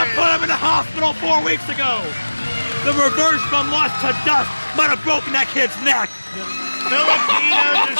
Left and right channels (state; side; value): inverted; both; correlation -1.00